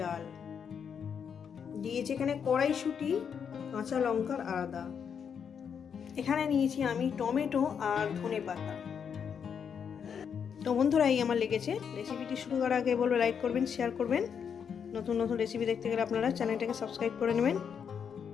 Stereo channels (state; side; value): quieter; right; 7.2 dB